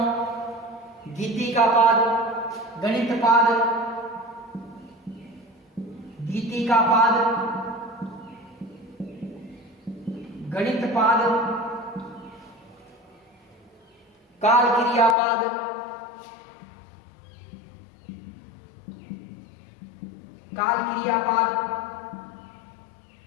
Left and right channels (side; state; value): right; drops out; at 15.2 s